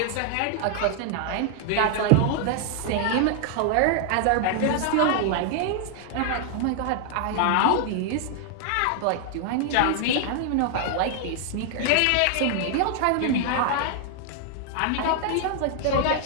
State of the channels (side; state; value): both; different; correlation 0.00